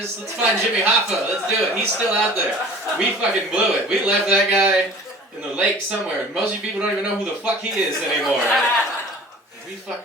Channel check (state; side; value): normal; both; correlation 0.44